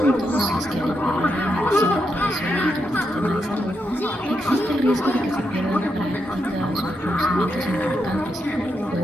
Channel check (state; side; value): normal; both; correlation 0.83